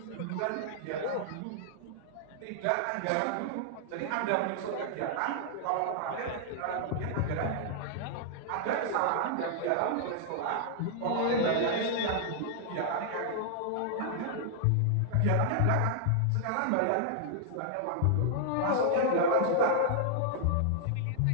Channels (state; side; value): different; both; correlation -0.01